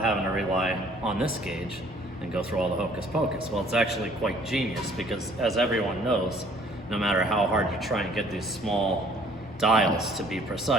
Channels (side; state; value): both; normal; correlation 0.58